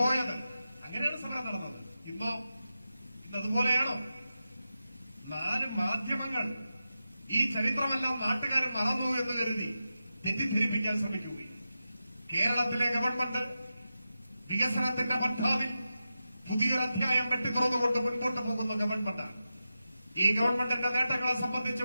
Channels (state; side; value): inverted; both; correlation -0.91